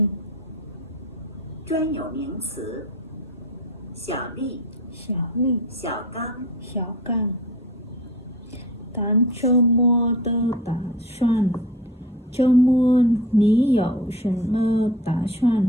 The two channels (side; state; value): both; normal; correlation 0.37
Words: 专有名词：小丽、小刚。谈周末的打算。周末你有什么打